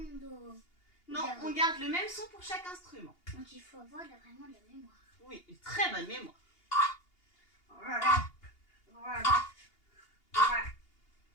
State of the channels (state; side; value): late; right; 2.8 ms